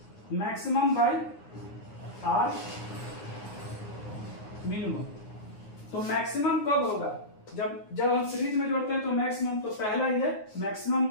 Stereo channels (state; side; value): late; right; 9.5 ms